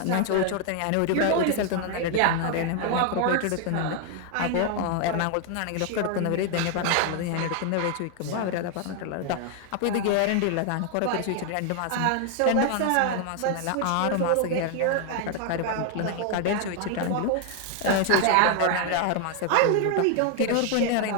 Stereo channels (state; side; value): different; both; correlation 0.00